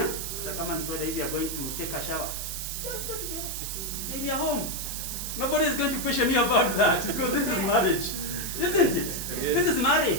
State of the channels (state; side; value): noise; right; hiss, 5 dB below the sound